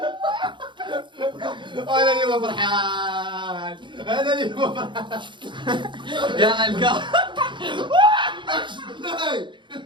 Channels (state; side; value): late; left; 0.23 ms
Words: انا اللي ما فرحان انا اللي ما فرحان يا علكا